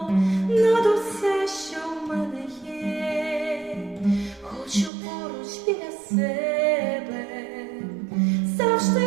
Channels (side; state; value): left; drops out; at 4.9 s